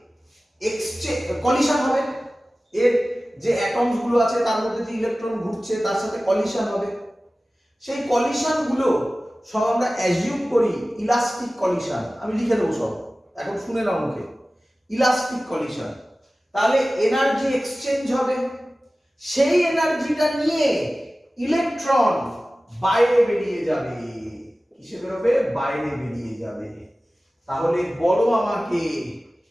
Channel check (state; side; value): normal; both; correlation 0.97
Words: এক্সচেঞ্জ, কলিশন হবে। এর যে অ্যাটমস গুলো আছে তার মধ্যে যে ইলেকট্রন ঘুরছে তার সাথে কলিশন হবে। সেই কলিশন গুলো সব আমরা অ্যাজিউম করি ইলাস্টিক কলিশন। আমি লিখে দেবো সব, এখন শুনে নাও মুখে। Elastic collision. তাহলে এনার্জি এক্সচেঞ্জ হবে। সেই এনার্জিটা নিয়ে ইলেকট্রন বাইরে বেরিয়ে যাবে। কিসে বেরোবে? বাইরে বেরিয়ে যাবে। তাহলে বলো আমাকে,